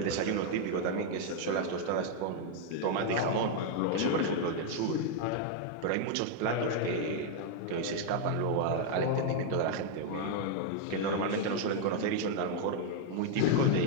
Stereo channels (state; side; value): different; both; correlation 0.00